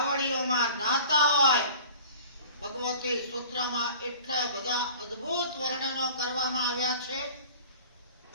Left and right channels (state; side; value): inverted; both; correlation -0.44